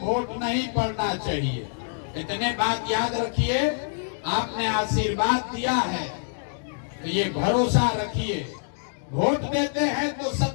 वोट नहीं पड़ना चाहिए। इतने बात याद रखिए, आपने आशीर्वाद दिया है तो ये भरोसा रखिए, वोट देते हैं तो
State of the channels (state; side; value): silent; right; digital silence